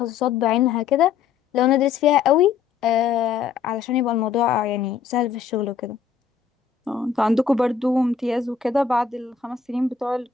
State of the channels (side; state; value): right; quieter; 6.5 dB